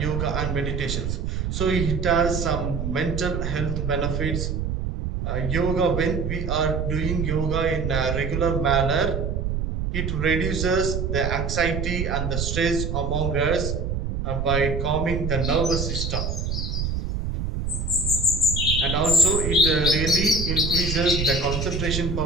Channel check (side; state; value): right; noise; rumble, 2 dB below the sound